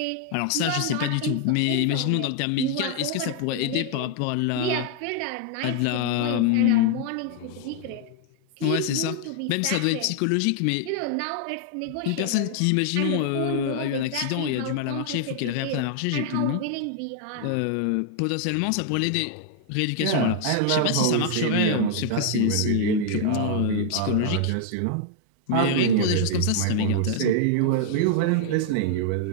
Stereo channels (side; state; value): both; different; correlation 0.00